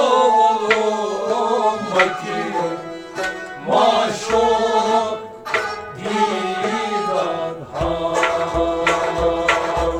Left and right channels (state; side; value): identical; both; correlation 1.00